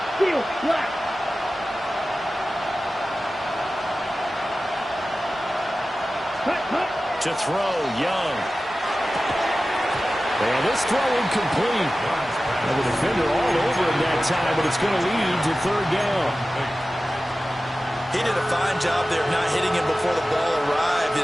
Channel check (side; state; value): both; normal; correlation 0.95